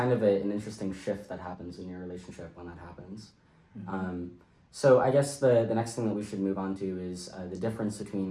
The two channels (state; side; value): identical; both; correlation 1.00